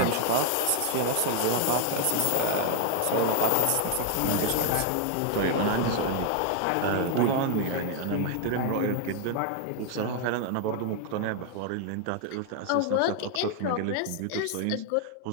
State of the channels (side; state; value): both; different; correlation 0.00